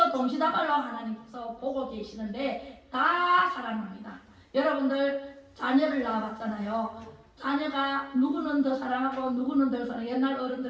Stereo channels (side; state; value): both; identical; correlation 1.00